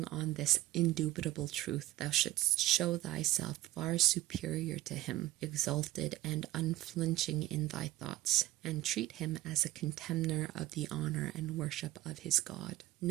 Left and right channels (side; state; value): left; quieter; 15.7 dB